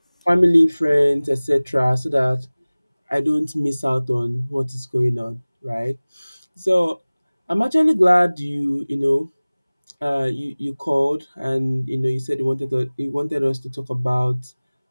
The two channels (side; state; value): both; inverted; correlation -1.00